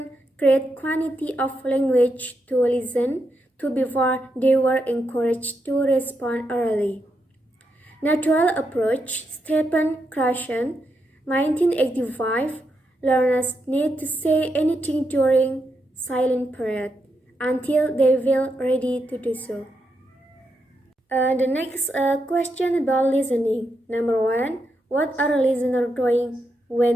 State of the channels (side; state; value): both; normal; correlation 0.83